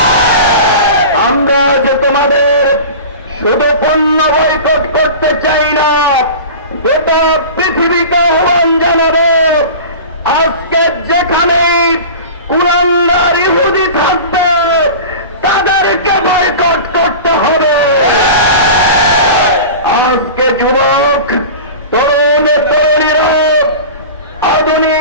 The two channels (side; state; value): both; inverted; correlation -0.34